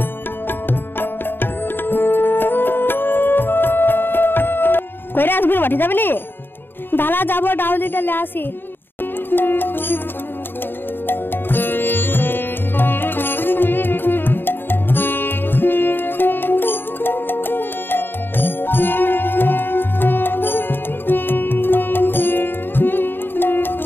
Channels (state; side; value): late; right; 0.098 ms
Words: কইরা আজমির মাঠে যাবে নি? দাঁড়া যাবো, ডাউলিটা লে আসি।